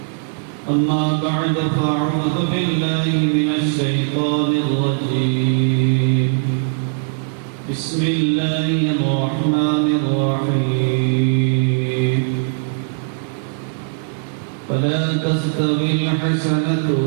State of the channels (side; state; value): left; silent; 56 dB below the other